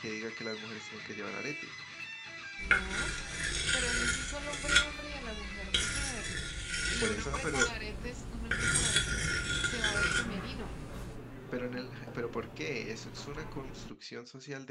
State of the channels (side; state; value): both; identical; correlation 1.00